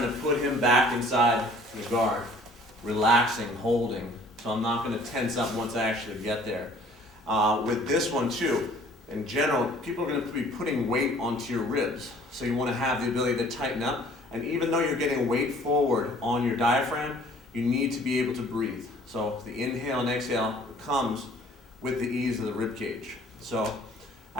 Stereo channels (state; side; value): normal; both; correlation 0.54